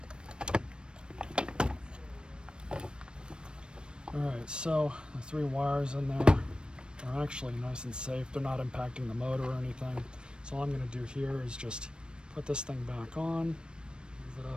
Alright, so the 3 wires in there are actually nice and safe. They're not impacting the motor or anything. So all I'm going to do here is just put this thing back on, move it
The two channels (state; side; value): late; left; 0.053 ms